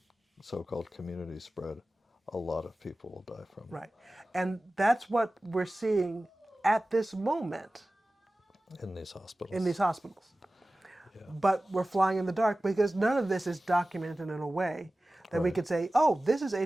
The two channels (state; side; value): normal; both; correlation 0.96